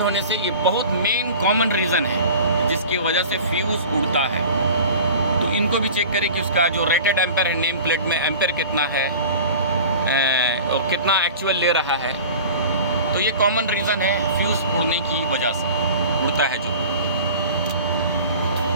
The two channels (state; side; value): inverted; both; correlation -0.40